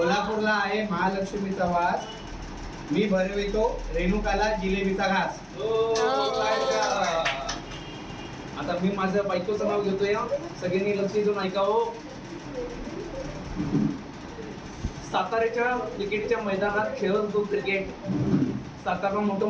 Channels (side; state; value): both; identical; correlation 1.00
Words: आहे महालक्ष्मीचा वास. मी भरवितो रेणुकाला जिलेबीचा घास. आता मी माझं बायकोचं नाव घेतोय. सगळ्यांनी लक्ष देऊन ऐकावं. साताऱ्याच्या क्रिकेटच्या मैदानात खेळत होतो क्रिकेट. सातारा मोठं